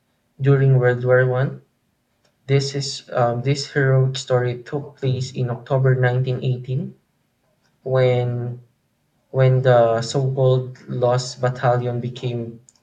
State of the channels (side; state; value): both; identical; correlation 1.00